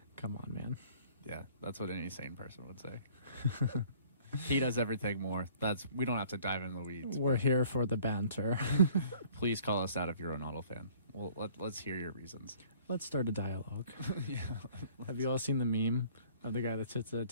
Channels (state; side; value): inverted; both; correlation -0.55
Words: Come on, man. Yeah, that's what any sane person would say. He does everything more. We don't have to dive into the weeds. We're here for the banter. Please call us out if you're a Ronaldo fan. Well, let's hear your reasons. Let's start a dialogue. Yeah. Have you all seen the meme of the guy that sits at a